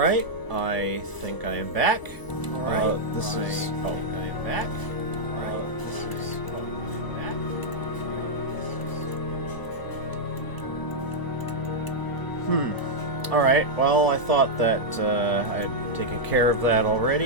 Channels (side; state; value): right; late; 1.0 ms